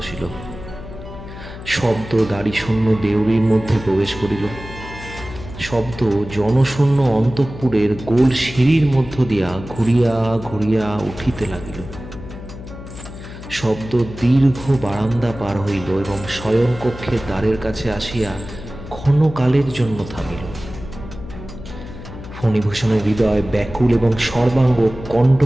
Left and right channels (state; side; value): noise; left; hum, 13 dB below the sound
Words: শব্দ দাড়িশূন্য দেউড়ির মধ্যে প্রবেশ করিল। শব্দ জনশূন্য অন্তঃপুরের গোল সিঁড়ির মধ্য দিয়া ঘুরিয়া ঘুরিয়া উঠিতে লাগিল। শব্দ দীর্ঘ বারান্দা পার হইল এবং শয়নকক্ষের দ্বারের কাছে আসিয়া ক্ষণকালের জন্য থামিল। ফণিভূষণের হৃদয় ব্যাকুল এবং সর্বাঙ্গ